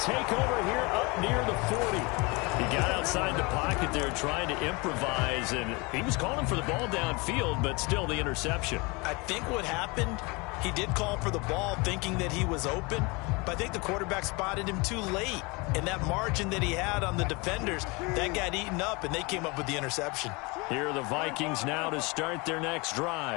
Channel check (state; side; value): quieter; right; 27.1 dB